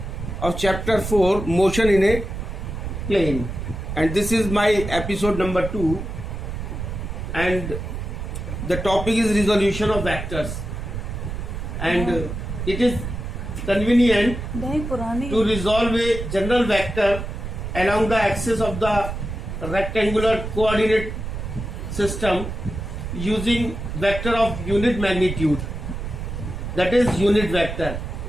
of chapter 4, motion in a plane, and this is my episode number 2, and the topic is resolution of vectors, and it is convenient to resolve a general vector along the axis of the rectangular coordinate system using vector of unit magnitude, that is unit vector,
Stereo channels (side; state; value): right; noise; rumble, 6 dB below the sound